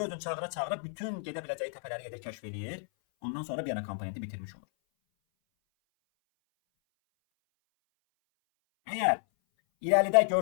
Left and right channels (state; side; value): silent; right; 57 dB below the other